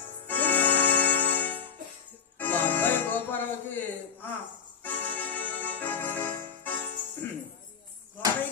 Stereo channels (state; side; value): quieter; right; 6.7 dB